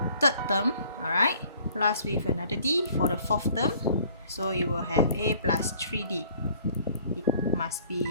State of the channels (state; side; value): inverted; both; correlation -0.55